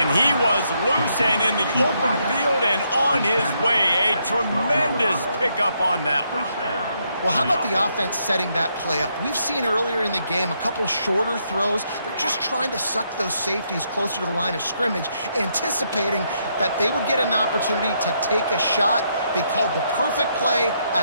he was loose and in the open field and on his way. A tremendous pickup on that one. Well, how about the offense setting that play up? We've seen earlier in the game a couple shorter throws. They're just trying to suck those safeties closer to the line of scrimmage, anticipating that they would get an opportunity to take a shot. They called the perfect play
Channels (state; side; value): inverted; both; correlation -0.76